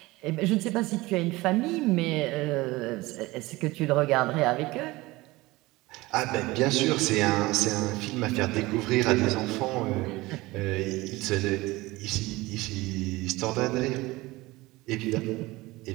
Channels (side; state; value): left; quieter; 20.5 dB